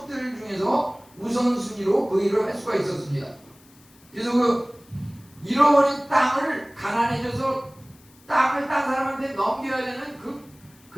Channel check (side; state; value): left; noise; hiss, 28 dB below the sound